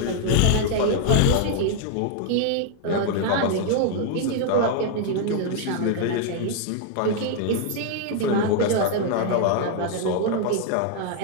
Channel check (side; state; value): both; different; correlation 0.00